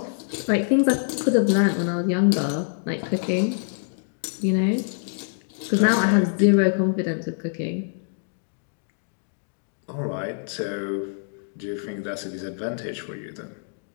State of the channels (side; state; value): right; silent; digital silence